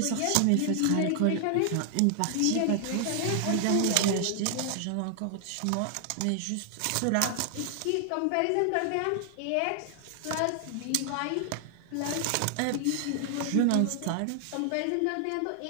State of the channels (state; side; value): different; both; correlation 0.00